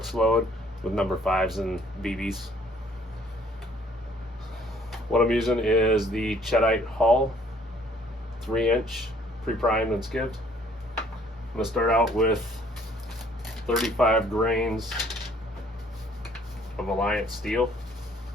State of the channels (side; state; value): both; normal; correlation 0.60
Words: load with number 5s and BBs. What I'm using is the Cheddite hull, 3-inch, pre-primed and skivved. I'm going to start out with 35 grains of Alliance steel.